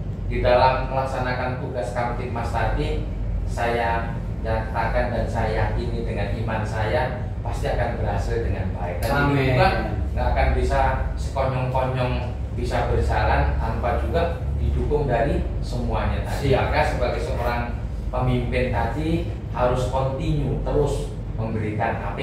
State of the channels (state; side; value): identical; both; correlation 1.00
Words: di dalam melaksanakan tugas Kamtibmas tadi, saya nyatakan dan saya yakini dengan iman saya pasti akan berhasil dengan baik. Dan ini juga nggak akan bisa sekonyong-konyong bisa berjalan tanpa juga didukung dari semuanya tadi. Maka sebagai seorang pemimpin tadi harus continue terus memberikan